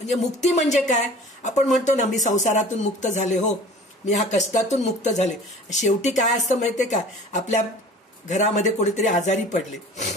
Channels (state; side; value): normal; both; correlation 0.44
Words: मुक्ती म्हणजे काय, आपण म्हणतो ना मी संसारातून मुक्त झाले, हो मी ह्या कष्टातून मुक्त झाले. शेवटी काय असतं माहितीये का, आपल्या घरामध्ये कोणीतरी आजारी